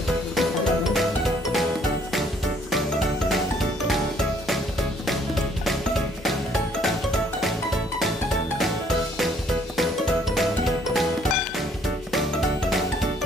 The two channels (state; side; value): normal; both; correlation 0.64